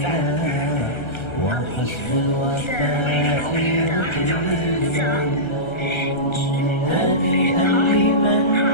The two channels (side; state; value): right; late; 1.3 ms